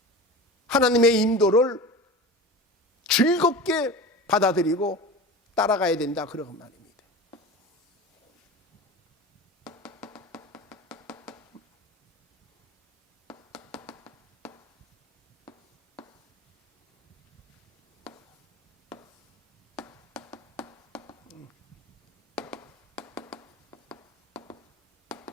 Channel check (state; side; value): normal; both; correlation 0.32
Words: 하나님의 인도를 즐겁게 받아들이고 따라가야 된다 그런 말입니다.